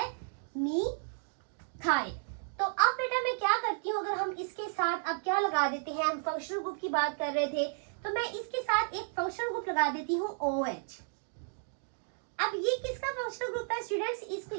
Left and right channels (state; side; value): silent; left; digital silence